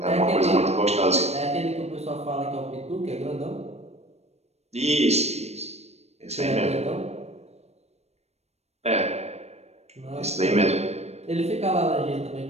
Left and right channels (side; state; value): left; late; 0.31 ms